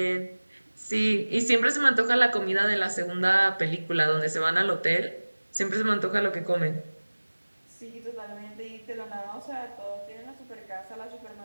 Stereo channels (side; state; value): both; inverted; correlation -1.00